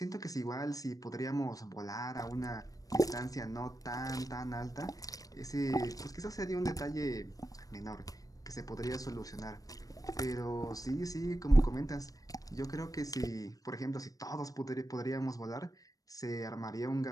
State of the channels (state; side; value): late; right; 0.17 ms